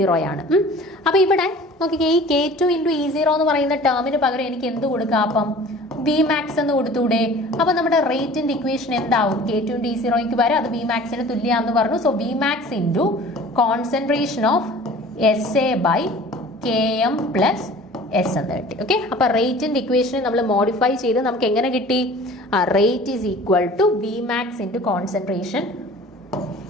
ആണ്. അപ്പോൾ ഇവിടെ നോക്കിക്കേ, ഈ K2 × E0 എന്ന് പറയുന്ന ടേമിന് പകരം എനിക്ക് എന്ത് കൊടുക്കാം? അപ്പം Vmax എന്ന് കൊടുത്തൂടെ? അപ്പോൾ നമ്മുടെ റേറ്റിന്റെ ഇക്വേഷൻ എന്താവും? K2 × E0 വരെ അത് Vmaxന് തുല്യമാണെന്ന് പറഞ്ഞു. So Vmax × concentration of SA by Km plus S എന്ന് കിട്ടി. ഓക്കെ, അപ്പൊ റേറ്റിന്റെ ഇക്വേഷനെ നമ്മൾ മോഡിഫൈ ചെയ്ത് നമുക്ക് എങ്ങനെ കിട്ടി? Rate is equal to Vmax × concentration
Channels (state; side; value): normal; both; correlation 0.45